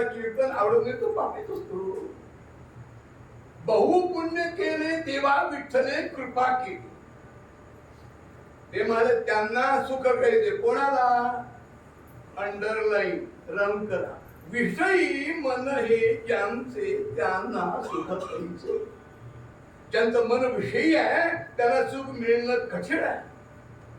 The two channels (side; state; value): both; identical; correlation 1.00